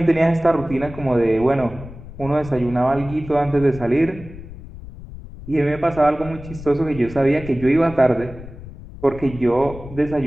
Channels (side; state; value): left; noise; rumble, 15 dB below the sound